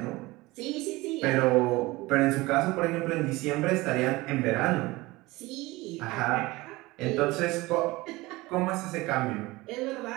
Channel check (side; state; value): left; quieter; 20.9 dB